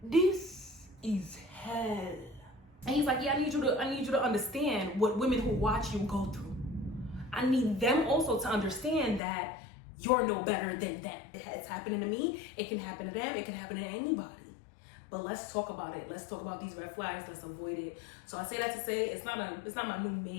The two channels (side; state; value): right; drops out; at 9.2 s